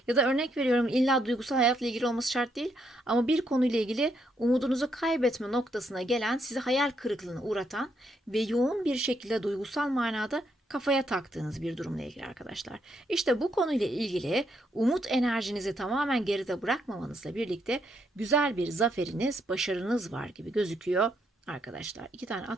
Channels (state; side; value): normal; both; correlation 0.76